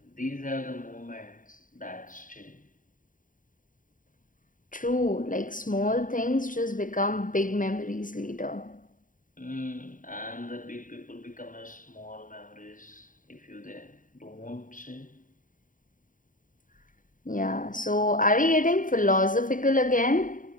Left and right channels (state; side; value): late; right; 0.39 ms